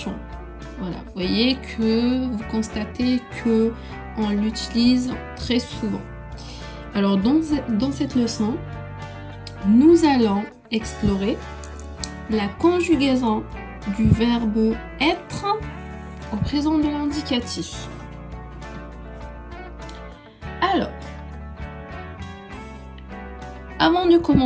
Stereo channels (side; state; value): both; identical; correlation 1.00